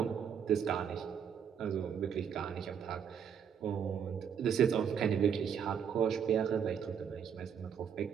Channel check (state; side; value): quieter; left; 7.7 dB